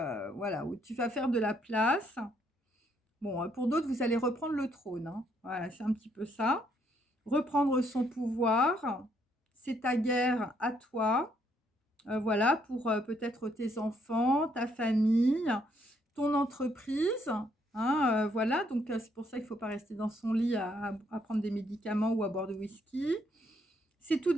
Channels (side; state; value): both; normal; correlation 0.71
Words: voilà, où tu vas faire de la place. Bon, pour d'autres, vous allez reprendre le trône, hein. Voilà, c'est un petit peu ça. Reprendre son pouvoir, c'est ta guerre à toi, voilà, pour, peut-être tes enfants, ta famille, ton entreprise, hein, voilà, donc c'est pour ça qu'il ne faut pas rester dans son lit à prendre des médicaments ou à boire du whisky. C'est tout